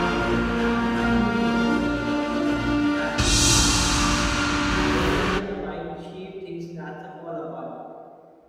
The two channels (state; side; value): identical; both; correlation 1.00